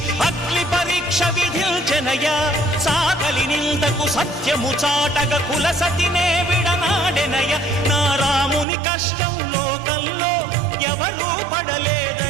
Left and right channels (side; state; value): left; drops out; at 8.7 s